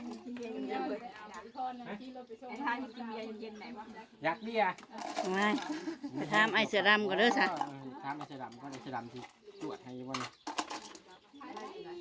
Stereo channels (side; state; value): both; identical; correlation 1.00